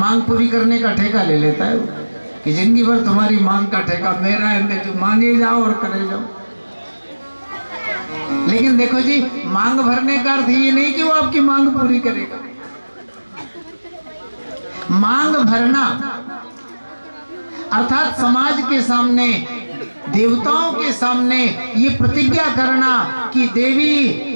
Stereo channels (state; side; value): inverted; both; correlation -1.00